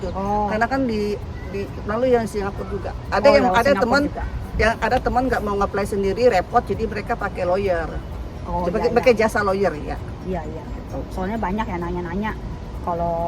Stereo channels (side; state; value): both; identical; correlation 1.00